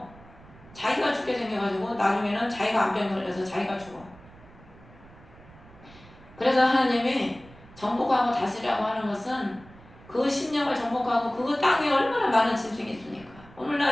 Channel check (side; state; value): right; noise; rumble, 22 dB below the sound